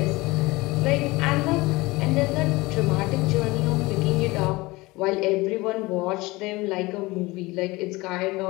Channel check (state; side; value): quieter; right; 21.7 dB